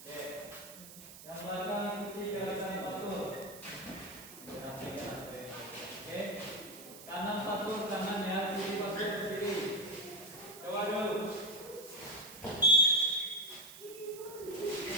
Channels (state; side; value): noise; right; hiss, 15 dB below the sound